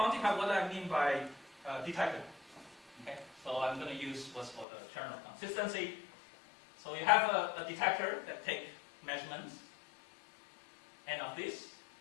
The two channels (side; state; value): right; drops out; at 4.7 s